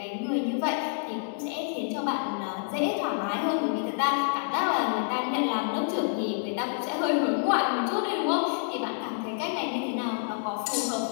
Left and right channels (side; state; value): right; silent; 58 dB below the other